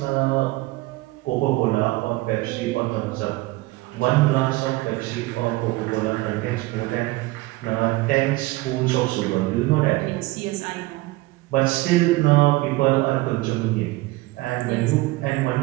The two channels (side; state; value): left; quieter; 20.1 dB